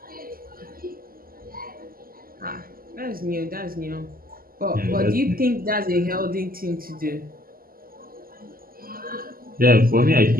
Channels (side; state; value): left; late; 0.42 ms